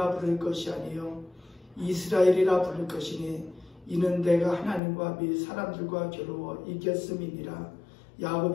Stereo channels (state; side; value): drops out; right; at 4.8 s